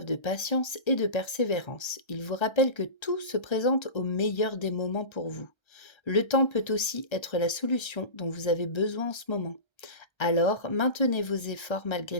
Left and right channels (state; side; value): late; right; 1.3 ms